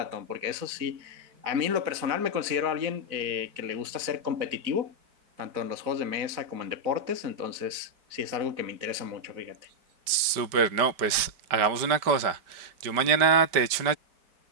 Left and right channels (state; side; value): late; left; 5.1 ms